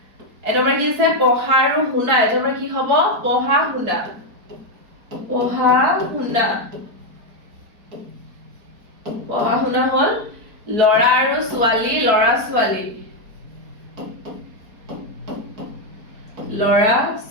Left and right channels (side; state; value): left; late; 4.6 ms